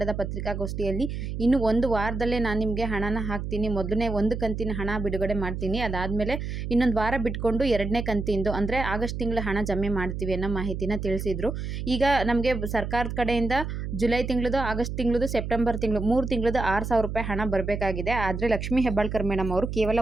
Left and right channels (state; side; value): noise; right; hum, 5 dB below the sound